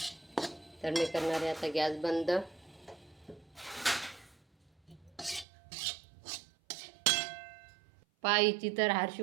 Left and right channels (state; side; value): drops out; left; at 5.5 s